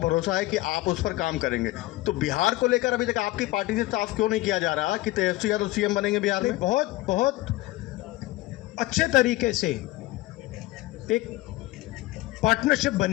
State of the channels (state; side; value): quieter; right; 18.4 dB